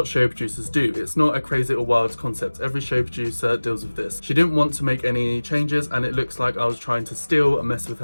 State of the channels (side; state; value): both; inverted; correlation -1.00